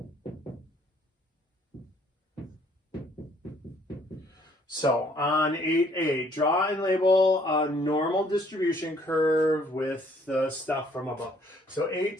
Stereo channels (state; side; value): normal; both; correlation 0.63